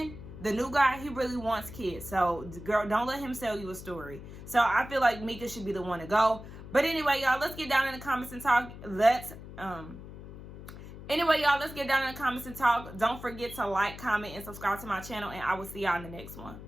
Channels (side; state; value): left; noise; hum, 14 dB below the sound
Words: the new guy, he really wants kids. So, girl, don't let him sell you a story. So, I feel like Mika should be the one to go. But anyway, y'all, let's get down in the comments and talk. Don't forget to like, comment, and subscribe to my channel. And I will see y'all in the next one.